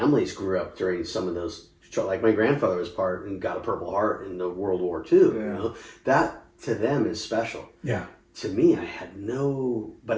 grew up during some of those, like my grandfather was part and got a Purple Heart in the World War II. Yeah. That to them is special. Yeah. To me, I had no.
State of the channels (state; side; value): identical; both; correlation 1.00